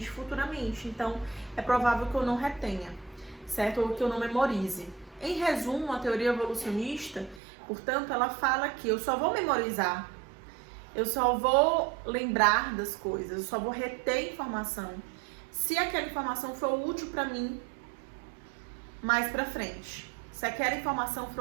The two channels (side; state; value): left; drops out; at 7.4 s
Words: futuramente. Então, é provável que eu não retenha, certo? Ou que eu não memorize. Em resumo, a teoria evolucionista, portanto, ela fala que eu só vou memorizar, eu só vou lembrar das coisas, eu só vou reter informação se aquela informação for útil para mim mais pra frente. Se aquela informação